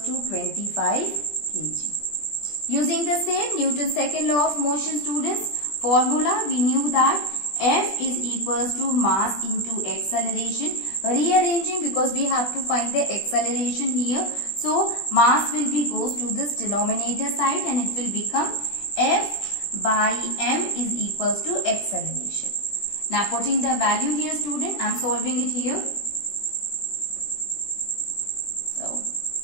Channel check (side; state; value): right; late; 20 ms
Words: to 25 kg. Using the same Newton's second law of motion, students, formula, we knew that F is equals to mass into acceleration. Rearranging, because we have to find the acceleration here. So mass will be goes to this denominator side and it will become F by m is equals to acceleration. Now putting the value here, student, I am solving it here. So